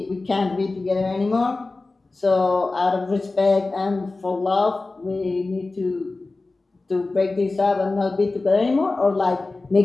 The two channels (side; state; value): right; quieter; 3.4 dB